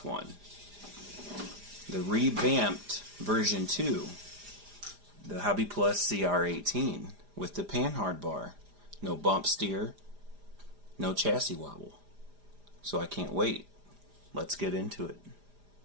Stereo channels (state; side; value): late; left; 4.9 ms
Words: one. The revamped version 2, the Hobby Plus CR-18 with the panhard bar. No bump steer, no chassis wobble. So I can't wait. Let's get into it.